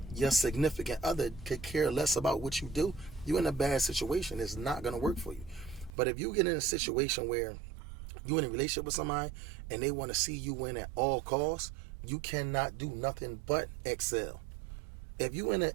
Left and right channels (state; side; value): drops out; left; at 5.9 s